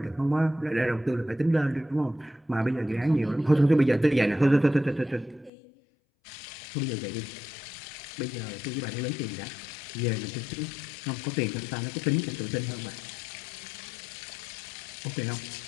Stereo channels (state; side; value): drops out; right; at 5.5 s